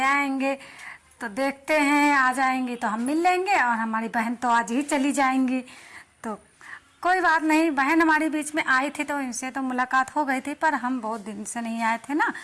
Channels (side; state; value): both; identical; correlation 1.00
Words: आएंगे। तो देखते हैं आ जाएंगी तो हम मिल लेंगे, और हमारी बहन तो आज ही चली जाएंगी। तो कोई बात नहीं, बहन हमारी बीच में आई थी तो इनसे तो मुलाकात हो गई थी, पर हम बहुत दिन से नहीं आए थे ना।